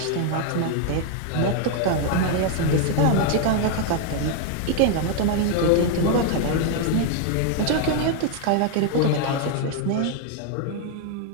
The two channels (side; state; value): both; different; correlation 0.00